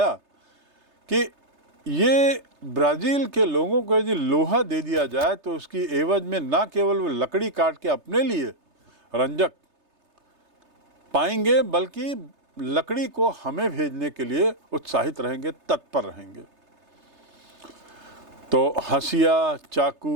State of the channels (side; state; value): left; late; 3.3 ms